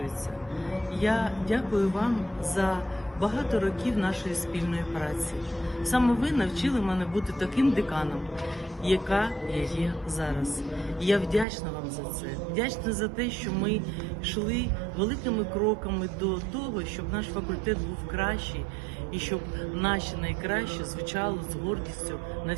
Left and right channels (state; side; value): drops out; left; at 11.5 s